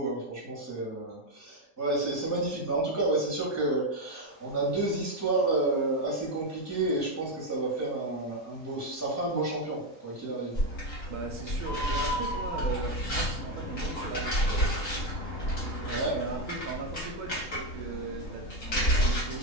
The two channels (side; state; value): right; late; 3.8 ms